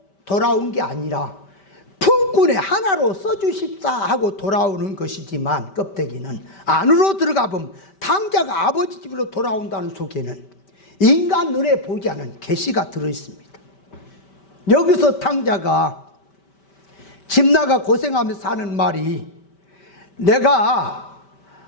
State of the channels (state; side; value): late; right; 5.1 ms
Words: 돌아온 게 아니라 품꾼의 하나로 써주십사 하고 돌아오는 것이지만, 껍데기는 안으로 들어가 보면 탕자가 아버지 집으로 돌아온다는 속에는 인간 눈에 보이지 않은 계시가 들어있습니다. 여기서 탕자가 집 나가 고생하면서 하는 말이, 내가